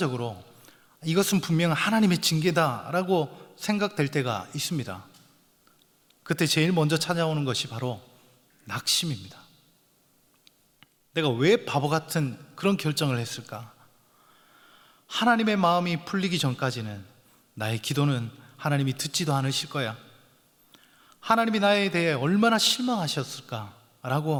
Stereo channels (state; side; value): identical; both; correlation 1.00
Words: 이것은 분명 하나님의 징계다라고 생각될 때가 있습니다. 그때 제일 먼저 찾아오는 것이 바로 낙심입니다. 내가 왜 바보 같은 그런 결정을 했을까? 하나님의 마음이 풀리기 전까지는 나의 기도는 하나님이 듣지도 않으실 거야. 하나님이 나에 대해 얼마나